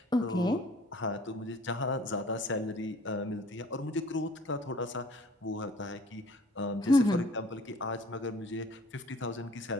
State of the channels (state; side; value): normal; both; correlation 0.52